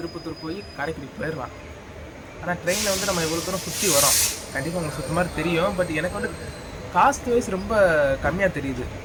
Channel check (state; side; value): identical; both; correlation 1.00